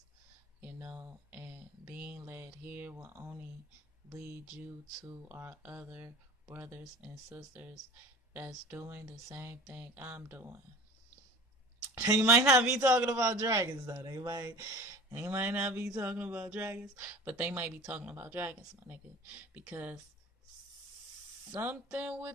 and being led here will only lead you to our other brothers and sisters that's doing the same thing I'm doing. They might not be talking about dragons though. They might not be talking about dragons, but they might be talking about dragons, my nigga. Because something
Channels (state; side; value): normal; both; correlation 0.40